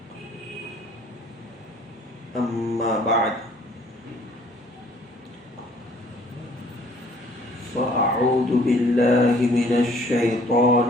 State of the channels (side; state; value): both; normal; correlation 0.58